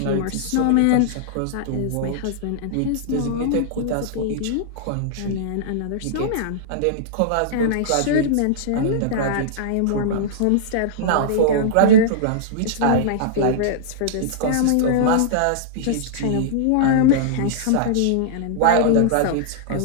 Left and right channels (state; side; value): different; both; correlation -0.02